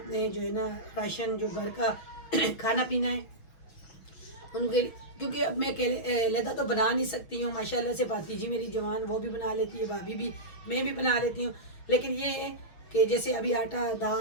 जो है ना राशन जो घर का खाना पीना है उनके, क्योंकि अब मैं लहदा तो बना नहीं सकती हूँ। माशाल्लाह से भातीजी मेरी जवान वो भी बना लेती है, भाभी भी, मैं भी बना लेती हूँ। लेकिन ये है कि जैसे अभी आटा,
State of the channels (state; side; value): late; right; 6.1 ms